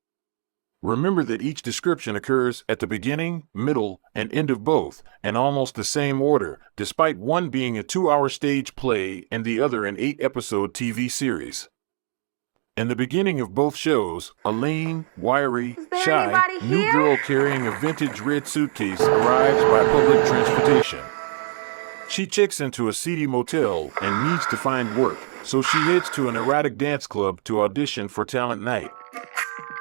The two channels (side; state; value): left; silent; digital silence